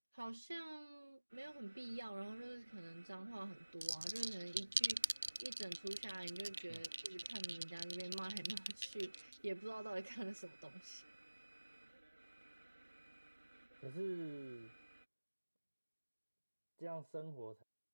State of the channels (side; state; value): both; inverted; correlation -1.00